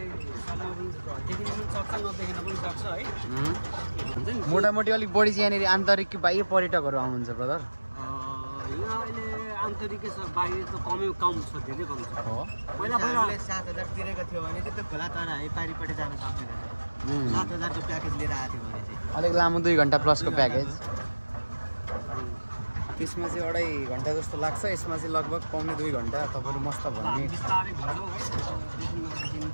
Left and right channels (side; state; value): both; inverted; correlation -1.00